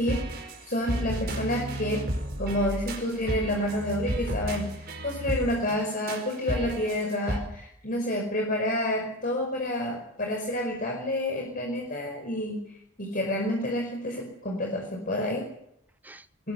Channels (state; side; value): normal; both; correlation 0.29